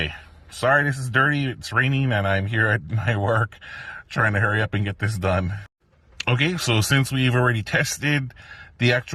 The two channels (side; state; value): both; identical; correlation 1.00